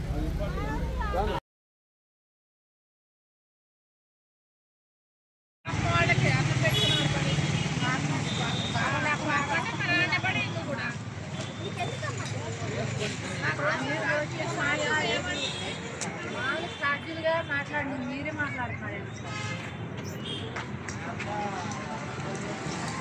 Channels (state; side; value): identical; both; correlation 1.00